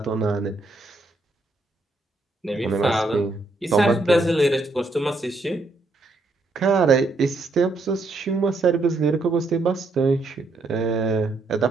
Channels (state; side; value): quieter; left; 3.1 dB